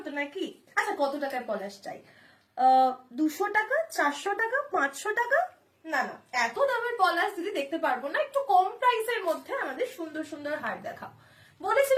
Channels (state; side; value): identical; both; correlation 1.00